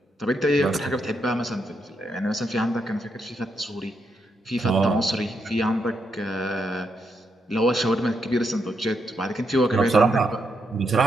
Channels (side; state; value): both; normal; correlation 0.80